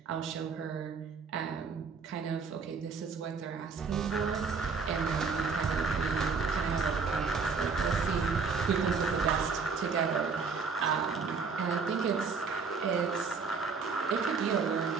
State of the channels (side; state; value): left; quieter; 5.1 dB